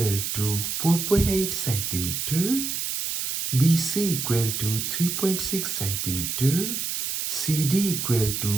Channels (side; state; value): right; noise; hiss, 2 dB below the sound